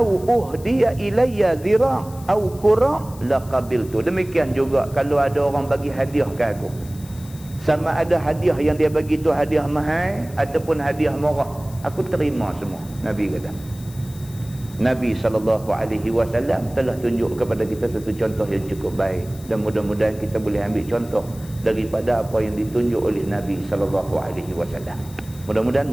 uhdiya ilayya zira' au qura' laqabiltu. Demikian juga kalau ada orang bagi hadiah ke aku, sama ada hadiah yang dia bagi tu hadiah mahal ataupun hadiah murah, aku terima semua. Nabi kata. Nabi SAW telah tunjuk kepada kita satu contoh yang cukup baik, dan mudah-mudahan kita boleh ambil contoh daripada apa yang ditunjuk oleh Nabi SAW. Mudah-mudahan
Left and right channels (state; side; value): noise; left; hiss, 21 dB below the sound